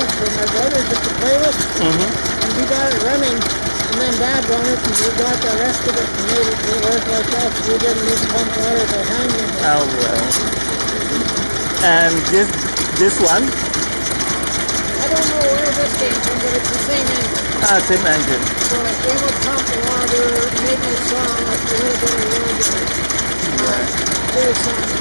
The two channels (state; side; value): inverted; both; correlation -1.00